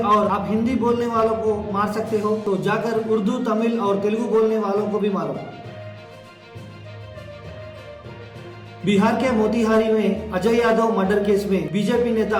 और आप हिंदी बोलने वालों को मार सकते हो तो जाकर उर्दू, तमिल और तेलुगु बोलने वालों को भी मारो। बिहार के मोतिहारी में अजय यादव मर्डर केस में बीजेपी नेता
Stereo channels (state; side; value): identical; both; correlation 1.00